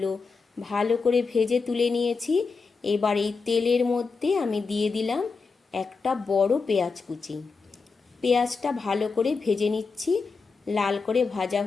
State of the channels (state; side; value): quieter; right; 4.7 dB